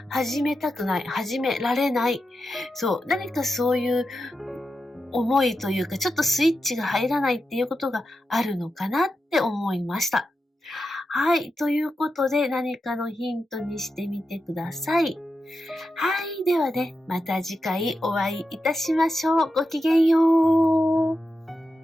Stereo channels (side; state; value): both; normal; correlation 0.89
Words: 始めたくない、始められない。そう、何かそういう思いというか、ちょっとスイッチが入らないっていうことがあるのかなって思いました。はい。ということで、何かのヒントにしてみてください。はい。ではね、また次回お会いいたしましょう。ごきげんよう。